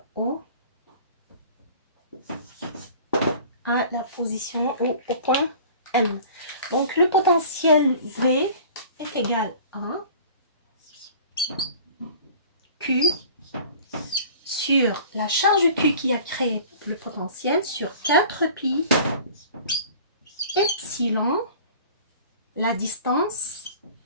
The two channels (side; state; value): both; inverted; correlation -0.45